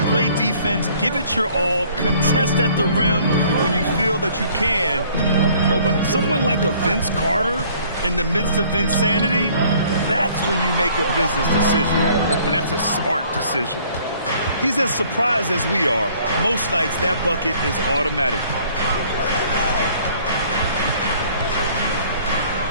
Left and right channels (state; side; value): inverted; both; correlation -0.57